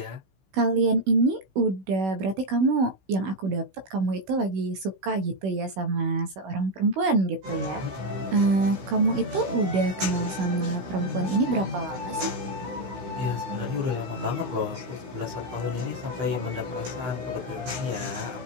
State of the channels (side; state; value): left; late; 16 ms